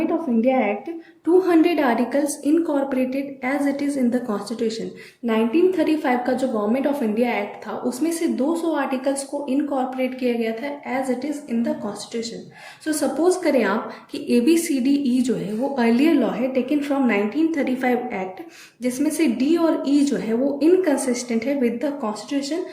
of India act 200 articles incorporated as it is in the constitution. 1935 का जो गवर्नमेंट ऑफ इंडिया एक्ट था उसमें से 200 आर्टिकल्स को इनकॉर्पोरेट किया गया था as it is in the constitution. So suppose करें आप कि ABCDE जो है वो अर्लियर लॉ है टेकन फ्रॉम 1935 एक्ट, जिसमें से D और E जो है वो इनकंसिस्टेंट है विद द कॉन्स्टिट्यूशन।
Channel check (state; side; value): identical; both; correlation 1.00